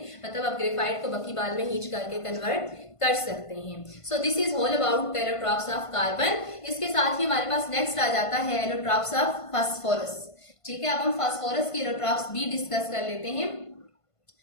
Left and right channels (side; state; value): right; late; 1.5 ms